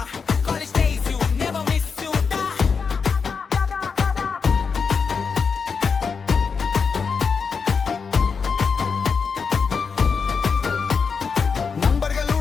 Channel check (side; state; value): right; quieter; 5.6 dB